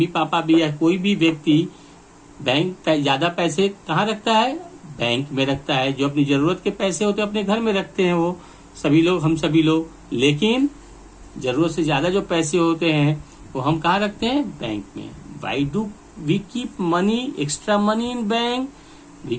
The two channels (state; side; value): identical; both; correlation 1.00